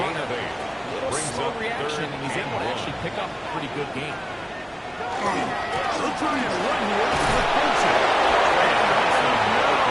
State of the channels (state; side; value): identical; both; correlation 1.00